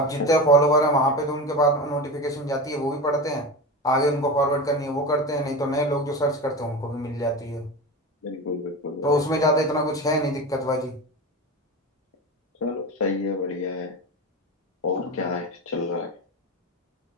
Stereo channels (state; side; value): normal; both; correlation 0.25